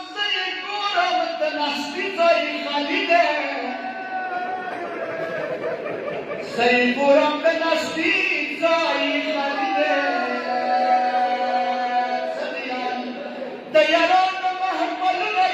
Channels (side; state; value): both; identical; correlation 1.00